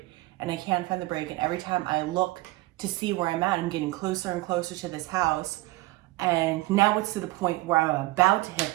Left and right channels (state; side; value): quieter; left; 19.8 dB